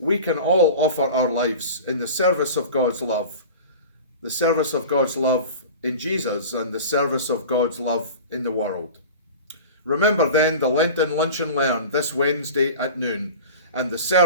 can all offer our lives in the service of God's love, the service of God's love in Jesus and the service of God's love in the world. Remember then the Lenten Lunch and Learn this Wednesday at noon and the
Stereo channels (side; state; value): both; inverted; correlation -0.35